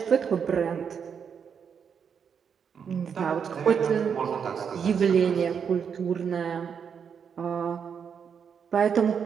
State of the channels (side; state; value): left; quieter; 7.0 dB